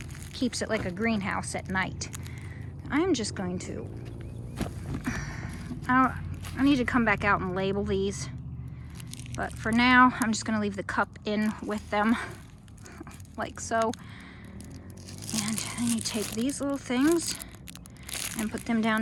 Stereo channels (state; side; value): identical; both; correlation 1.00